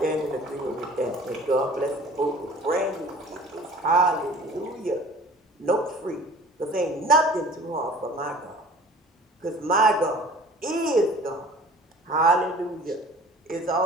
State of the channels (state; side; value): normal; both; correlation 0.47